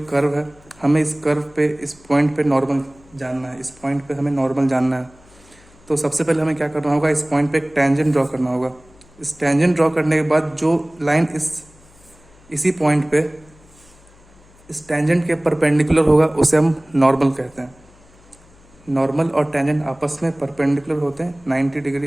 कर्व है, हमें इस कर्व पे इस पॉइंट पे नॉर्मल जानना है, इस पॉइंट पे हमें नॉर्मल जानना है, तो सबसे पहले हमें क्या करना होगा? इस पॉइंट पे एक टेंजेंट ड्रॉ करना होगा। इस टेंजेंट ड्रॉ करने के बाद जो लाइन इसी पॉइंट पे इस टेंजेंट के परपेंडिकुलर होगा उसे हम नॉर्मल कहते हैं। नॉर्मल और टेंजेंट आपस में परपेंडिकुलर होते हैं, 90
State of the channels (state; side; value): noise; left; hum, 27 dB below the sound